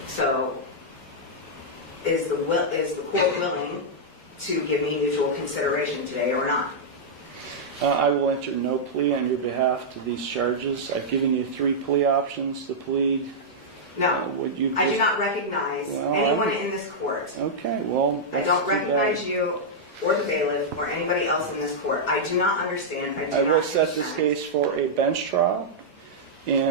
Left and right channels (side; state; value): both; normal; correlation -0.08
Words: So, is the court willing to give me mutual consideration today or not? I will enter no plea on your behalf to these charges. I've given you 3 plea options to plead. No, I do not recognize anyone in this court. Okay, well, I don't recognize you or the bailiff or anybody else in this court. I do not understand. I will set this case for a bench trial,